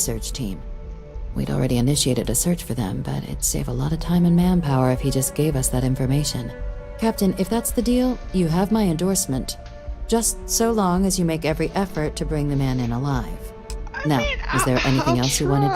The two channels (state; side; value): identical; both; correlation 1.00